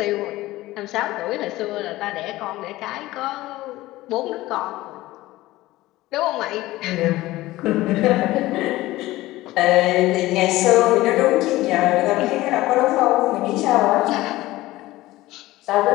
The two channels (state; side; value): quieter; right; 17.6 dB